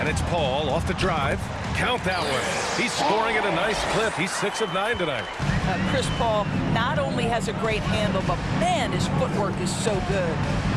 it's Paul off the drive. Count that one. He's scoring at a nice clip. He's 6 of 9 tonight. Chris Paul not only has a great handle, but man, his footwork is so good.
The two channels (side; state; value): both; identical; correlation 1.00